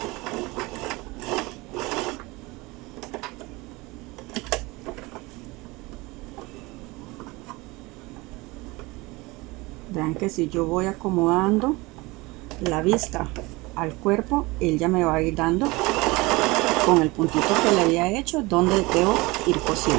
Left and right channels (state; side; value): quieter; left; 23.1 dB